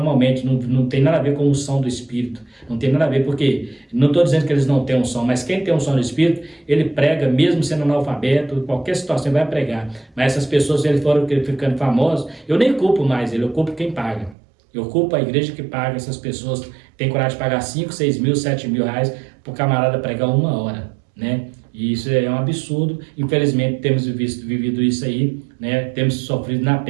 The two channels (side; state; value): left; drops out; at 14.4 s